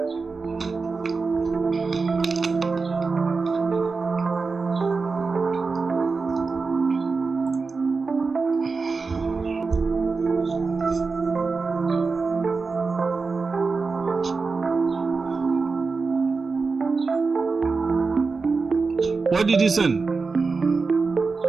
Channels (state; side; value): quieter; left; 4.4 dB